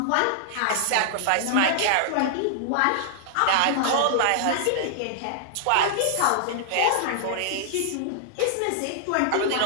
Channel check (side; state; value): both; different; correlation -0.01